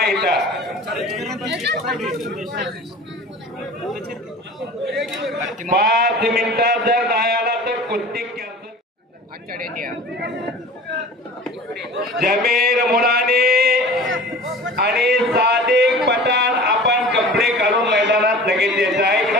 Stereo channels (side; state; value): both; normal; correlation 0.40